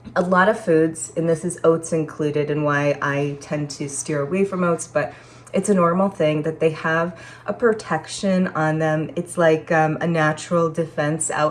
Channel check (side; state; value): both; identical; correlation 1.00